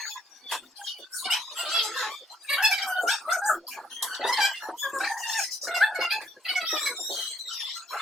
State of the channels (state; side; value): normal; both; correlation 0.68